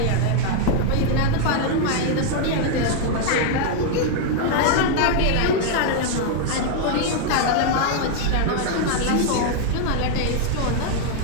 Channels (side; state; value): both; different; correlation 0.00